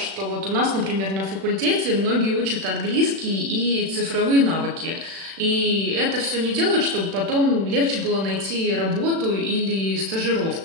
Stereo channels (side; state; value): left; late; 36 ms